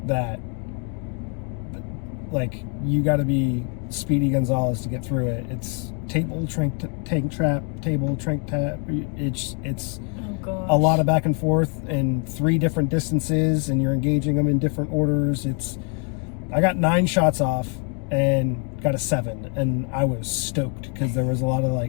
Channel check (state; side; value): quieter; right; 39.8 dB